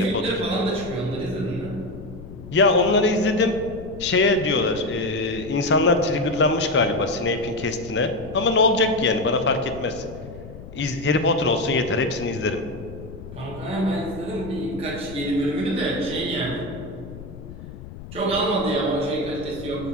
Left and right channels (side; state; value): left; noise; rumble, 14 dB below the sound